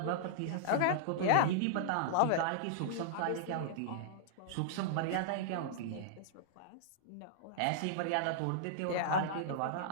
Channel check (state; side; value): different; both; correlation -0.02